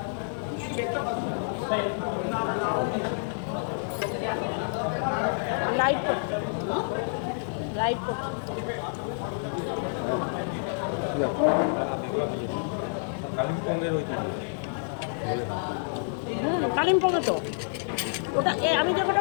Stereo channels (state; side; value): silent; right; 57 dB below the other